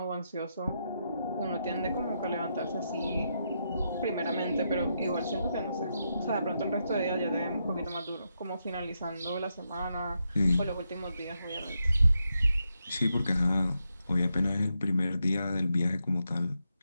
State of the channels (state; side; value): inverted; both; correlation -0.83